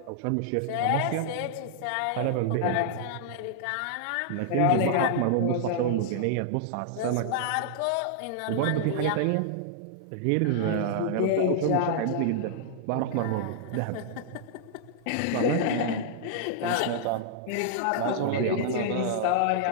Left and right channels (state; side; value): different; both; correlation -0.01